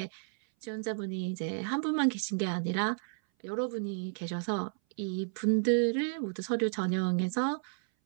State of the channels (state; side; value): silent; left; 56 dB below the other